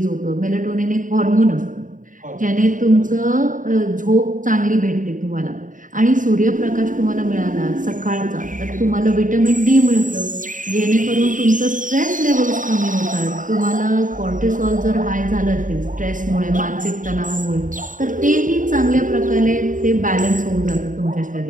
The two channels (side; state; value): left; late; 0.38 ms